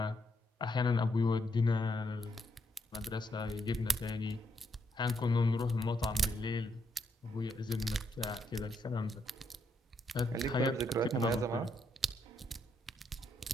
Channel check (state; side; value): normal; both; correlation 0.77